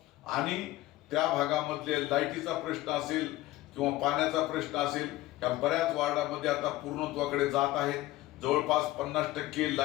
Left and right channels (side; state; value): right; quieter; 16.9 dB